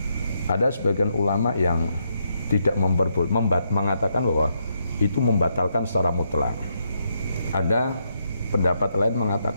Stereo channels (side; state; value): both; inverted; correlation -0.79